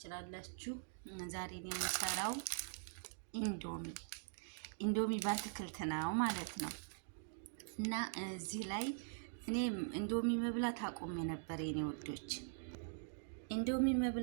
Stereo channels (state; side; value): silent; left; digital silence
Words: ዛሬ የምሰራው ኢንዶሚ በአትክልት ነው ማለት ነው። እና እዚህ ላይ እኔ ኢንዶሚ መብላት አቁሜ ነበር የኔ ወዶች፣ ኢንዶሚ